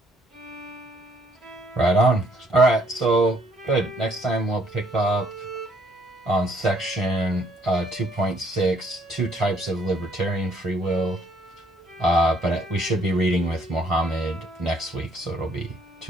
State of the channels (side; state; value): both; normal; correlation 0.66